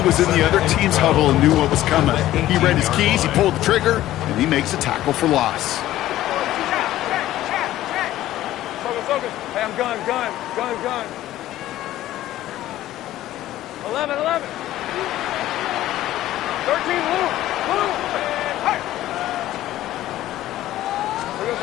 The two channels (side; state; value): right; quieter; 14.3 dB